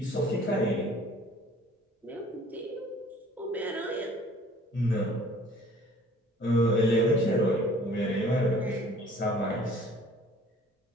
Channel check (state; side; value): normal; both; correlation 0.52